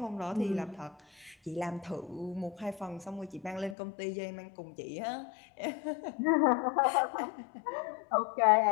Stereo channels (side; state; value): right; drops out; at 3.8 s